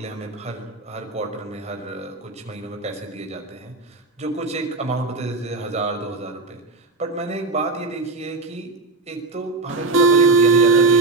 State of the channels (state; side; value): quieter; left; 3.5 dB